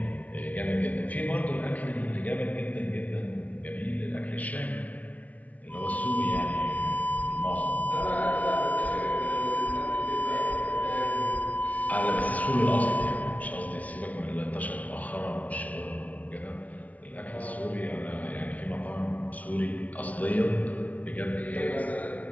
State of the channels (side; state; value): right; late; 0.071 ms